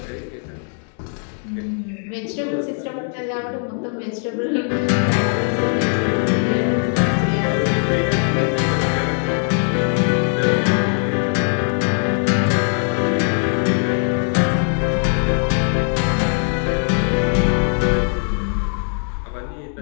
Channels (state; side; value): silent; right; 56 dB below the other